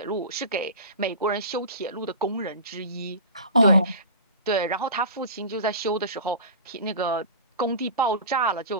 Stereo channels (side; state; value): both; inverted; correlation -0.34